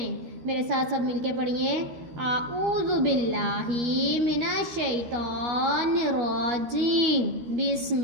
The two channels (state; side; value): late; left; 13 ms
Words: میرے ساتھ سب مل کے پڑھیے۔ اعوذ باللہ من الشیطان الرجیم، بسم